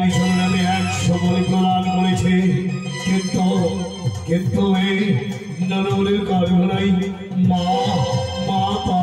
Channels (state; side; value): identical; both; correlation 1.00